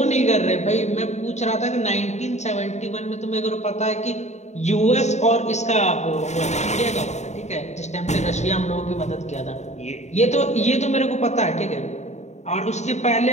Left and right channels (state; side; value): late; right; 0.33 ms